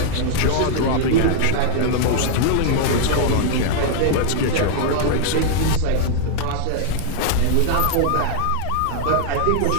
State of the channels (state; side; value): different; both; correlation -0.01